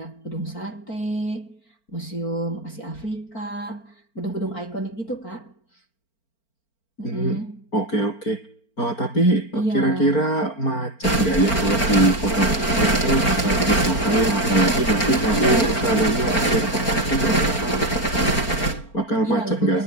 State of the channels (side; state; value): right; late; 4.4 ms